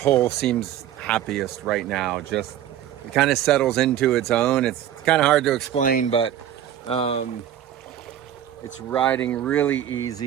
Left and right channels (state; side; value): quieter; left; 11.0 dB